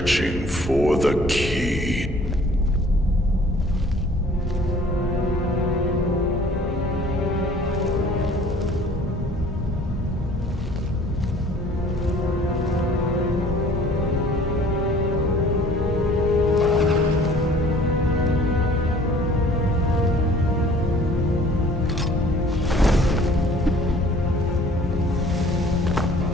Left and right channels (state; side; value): normal; both; correlation 0.52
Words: for the key.